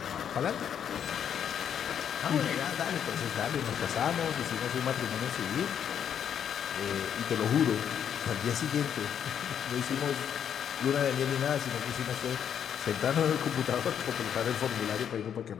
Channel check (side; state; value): right; quieter; 8.7 dB